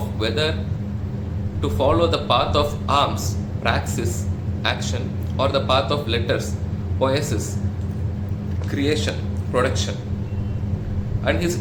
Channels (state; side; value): identical; both; correlation 1.00